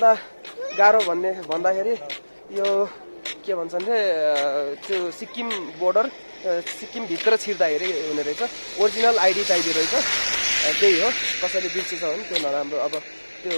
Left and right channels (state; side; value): inverted; both; correlation -1.00